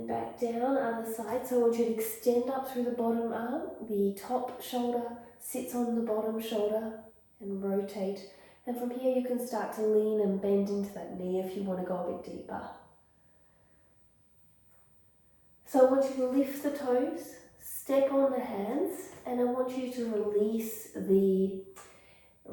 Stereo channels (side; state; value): both; identical; correlation 1.00